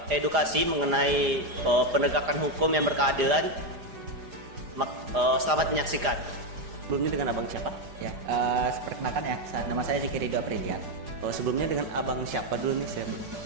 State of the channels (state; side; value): late; left; 4.9 ms